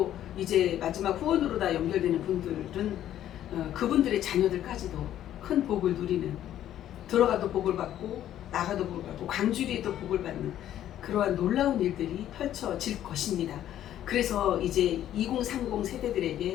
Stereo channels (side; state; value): right; quieter; 11.7 dB